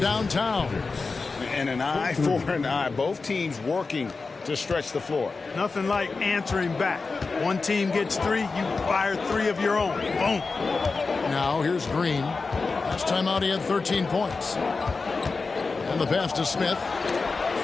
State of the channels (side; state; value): right; quieter; 4.2 dB